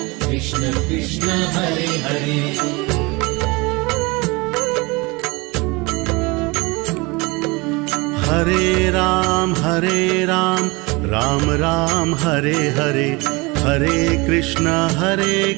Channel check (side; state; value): left; quieter; 25.3 dB